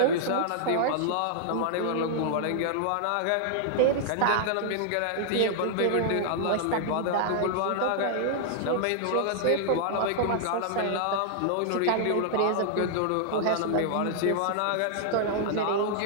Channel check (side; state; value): both; different; correlation -0.01